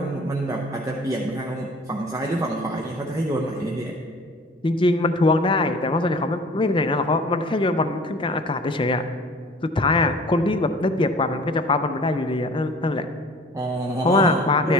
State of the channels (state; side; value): normal; both; correlation 0.47